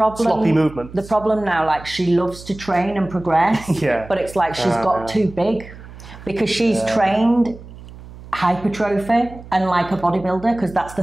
Sloppy movement. The problem now, like, she loves to train and progress, but it's like she's got too big because she's trained hypertrophy and like a bodybuilder, because that's the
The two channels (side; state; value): right; noise; hum, 17 dB below the sound